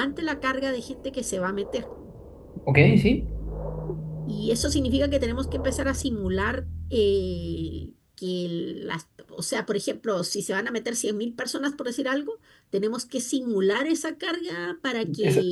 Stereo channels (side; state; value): both; identical; correlation 1.00